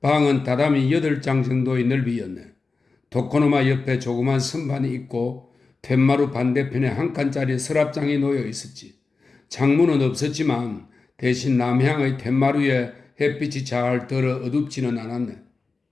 다다미 8장 정도의 넓이였네. 도코노마 옆에 조그만 선반이 있고 툇마루 반대편에 한 칸짜리 서랍장이 놓여 있었지. 창문은 없었지만 대신 남향의 툇마루에 햇빛이 잘 들어 어둡지는 않았네.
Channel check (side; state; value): right; quieter; 4.0 dB